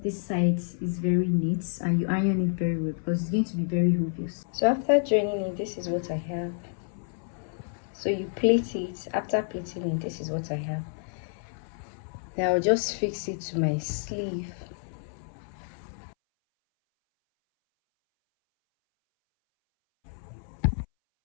this side is very neat and you iron it very well because it's going to be very obvious. So after joining it, this is what I have. So you plait it. After plaiting it, this is what I have. Now I'll just fix it to my sleeve.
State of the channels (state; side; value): silent; right; 59 dB below the other